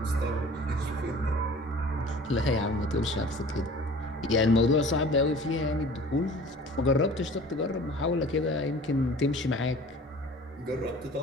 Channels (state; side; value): normal; both; correlation 0.45